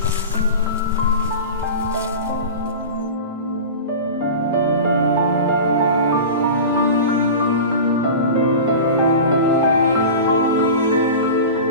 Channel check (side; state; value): both; inverted; correlation -0.32